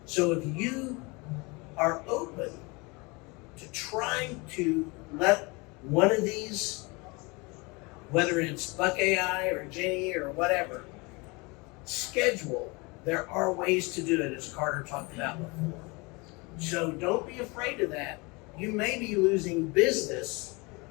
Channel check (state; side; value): quieter; right; 27.1 dB